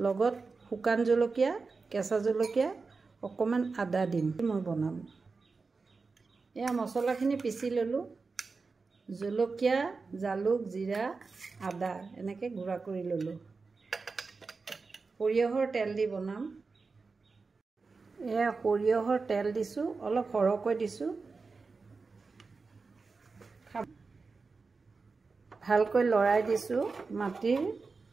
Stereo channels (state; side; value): quieter; left; 4.3 dB